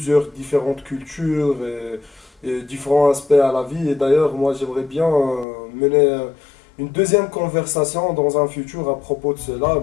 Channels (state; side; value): drops out; right; at 5.5 s